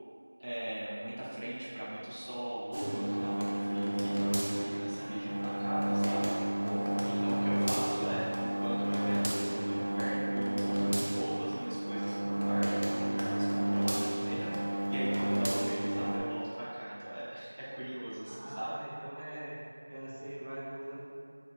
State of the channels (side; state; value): both; inverted; correlation -1.00